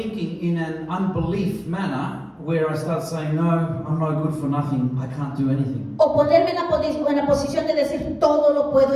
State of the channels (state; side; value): identical; both; correlation 1.00